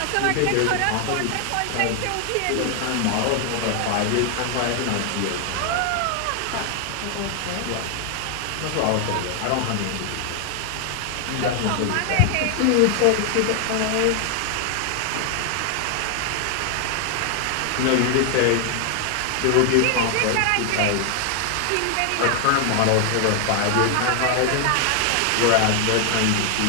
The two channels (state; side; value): different; both; correlation 0.00